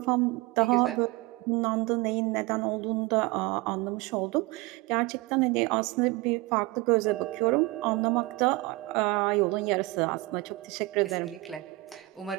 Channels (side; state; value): left; quieter; 21.8 dB